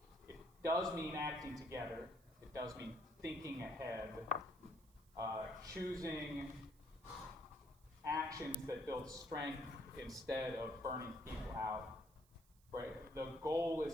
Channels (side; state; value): right; noise; hiss, 29 dB below the sound